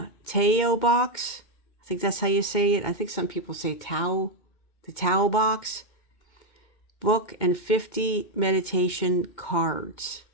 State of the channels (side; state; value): right; late; 2.1 ms